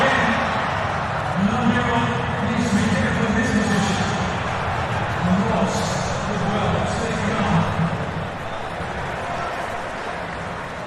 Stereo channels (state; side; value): identical; both; correlation 1.00